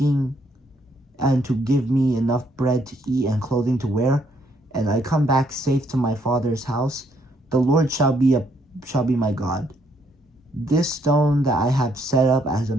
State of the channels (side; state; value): both; normal; correlation 0.71